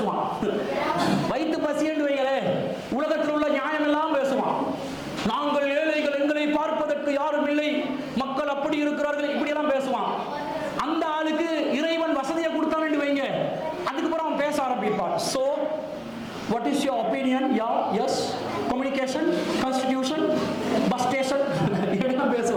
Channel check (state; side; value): identical; both; correlation 1.00